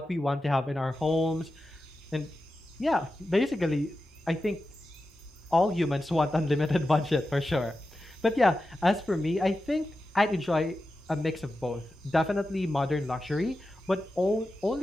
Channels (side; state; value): both; normal; correlation 0.92